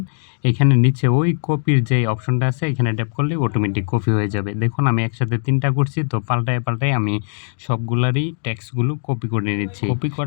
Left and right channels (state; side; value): silent; right; digital silence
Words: এখানে নিচে ওই কপির যে অপশনটা আছে এখানে ট্যাপ করলে অটোমেটিক কপি হয়ে যাবে। দেখুন আমি একসাথে ৩টা করছি, তো পাল্টায় আমি সবগুলারই টেক্সটগুলো কপি করে নিচ্ছি। কপি